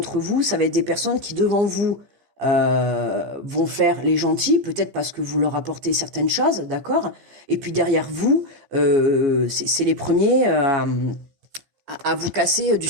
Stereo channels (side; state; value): left; late; 15 ms